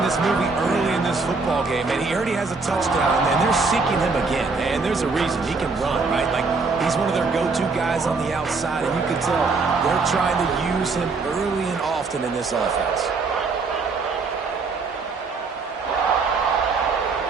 this movie early in this football game, and he already has a touchdown, and they're seeking him again. And there's a reason. He can run, right? Like, he's one of their go-to guys on the outside, and you can tell they're trying to use him early and often in this offense.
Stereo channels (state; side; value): quieter; left; 4.2 dB